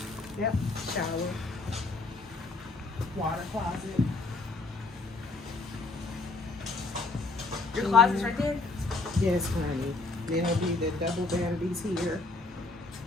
Yep. Shower. Water closet. Your closet's right there? Yes, honey. Then there'll be the double vanities here.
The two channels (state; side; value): quieter; right; 3.3 dB